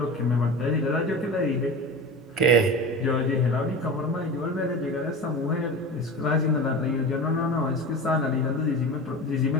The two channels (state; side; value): normal; both; correlation 0.30